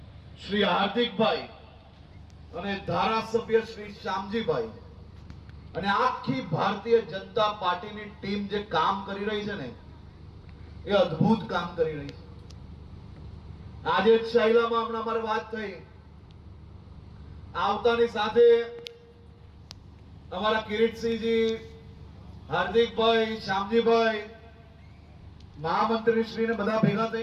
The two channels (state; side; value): identical; both; correlation 1.00